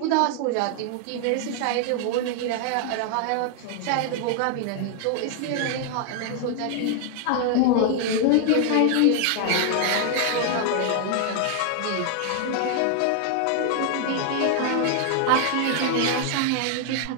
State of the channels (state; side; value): different; both; correlation 0.00